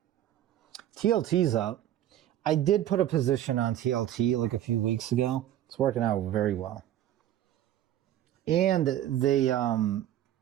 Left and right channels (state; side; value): quieter; left; 12.1 dB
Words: TLT's up. I did put a position on TLT like a few weeks ago. It's working out very well. And they,